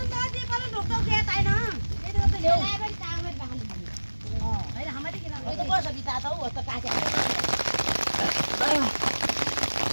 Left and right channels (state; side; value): inverted; both; correlation -1.00